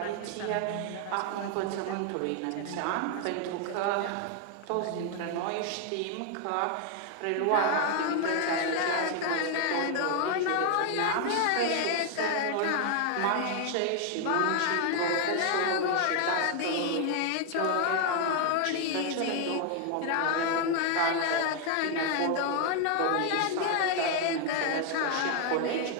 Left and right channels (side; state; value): both; different; correlation 0.00